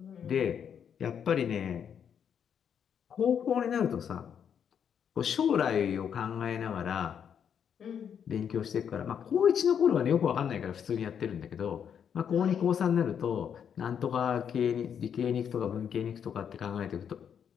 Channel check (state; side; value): quieter; right; 8.0 dB